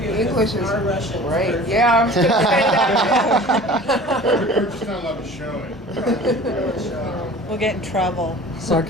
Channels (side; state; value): both; normal; correlation 0.43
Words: English is our Russian. great. Yeah, I was gonna say that. We're just not allowed to show it. We'll get in trouble.